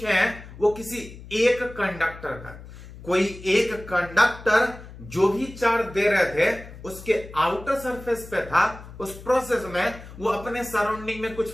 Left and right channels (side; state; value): left; noise; hum, 16 dB below the sound